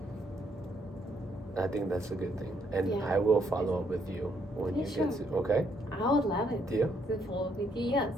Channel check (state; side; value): normal; both; correlation 0.72